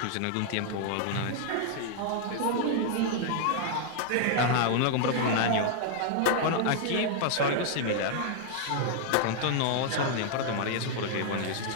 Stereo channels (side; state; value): both; different; correlation 0.00